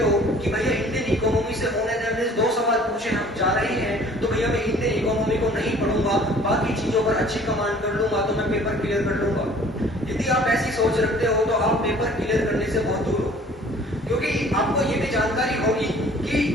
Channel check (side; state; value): both; normal; correlation 0.52